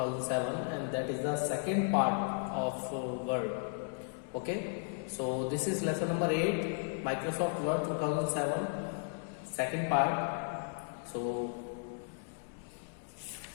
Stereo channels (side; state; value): right; silent; 54 dB below the other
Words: and that is the second part of Word. Okay, so this is lesson number 8, Microsoft Word 2007, second part. So